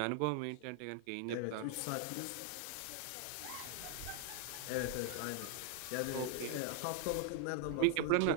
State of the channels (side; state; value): both; different; correlation 0.00